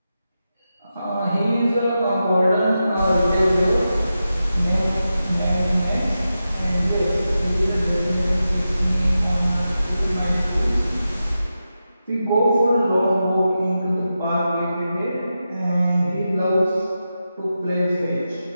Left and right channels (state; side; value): inverted; both; correlation -0.90